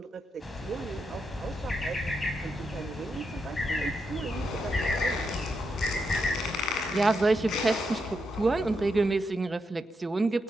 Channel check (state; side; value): normal; both; correlation 0.83